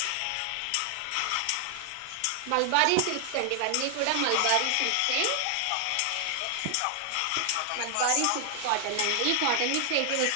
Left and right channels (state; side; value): different; both; correlation 0.00